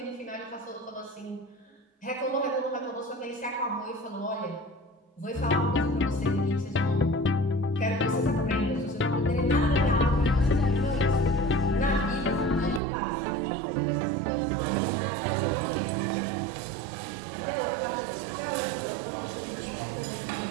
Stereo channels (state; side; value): drops out; left; at 12.8 s